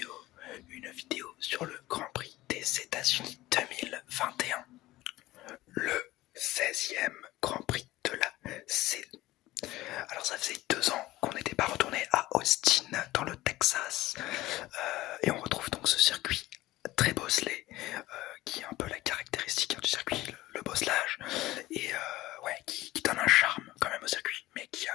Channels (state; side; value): quieter; right; 17.3 dB